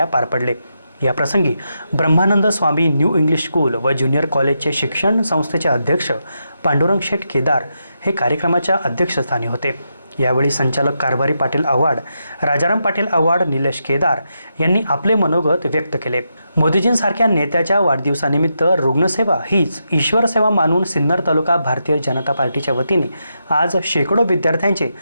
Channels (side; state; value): both; inverted; correlation -0.84